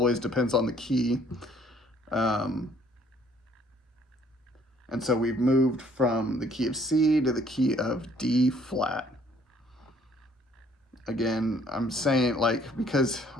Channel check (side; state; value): both; normal; correlation 0.61